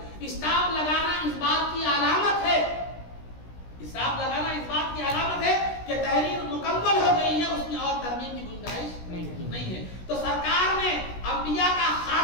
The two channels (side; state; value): right; late; 16 ms